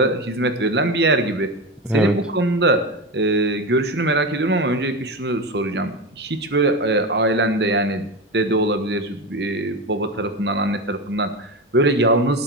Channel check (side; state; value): both; normal; correlation 0.20